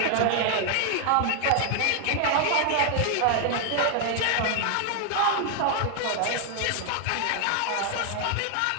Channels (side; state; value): both; different; correlation 0.00